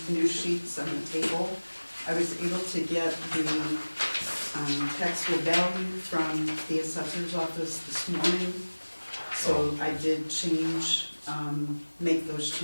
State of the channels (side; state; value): both; inverted; correlation -1.00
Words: new sheets on the table. I was able to get the taxable value from the assessor's office this morning. So I did change, make those